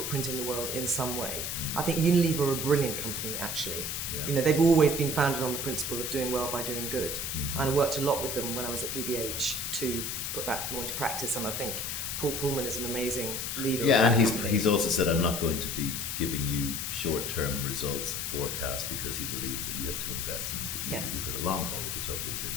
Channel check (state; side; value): noise; left; hiss, 2 dB below the sound